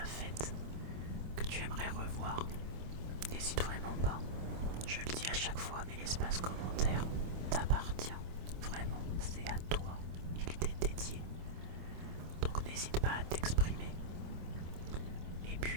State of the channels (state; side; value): late; left; 26 ms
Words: faites, que tu aimerais revoir. N'hésite vraiment pas. Je le dis à chaque fois, mais l'espace commentaire t'appartient. Vraiment, c'est à toi. Il t'est dédié. Donc n'hésite pas à t'exprimer. Et